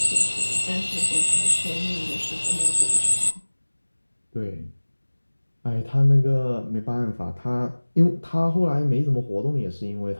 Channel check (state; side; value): inverted; both; correlation -1.00